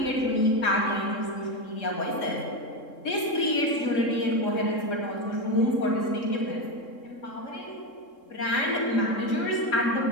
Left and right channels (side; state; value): right; late; 3.7 ms